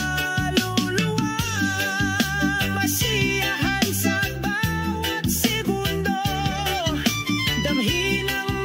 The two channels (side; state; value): both; identical; correlation 1.00